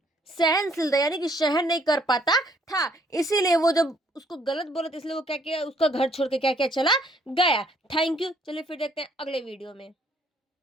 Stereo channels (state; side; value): normal; both; correlation 0.65